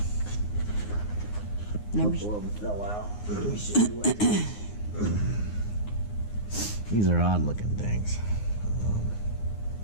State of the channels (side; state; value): right; late; 9.7 ms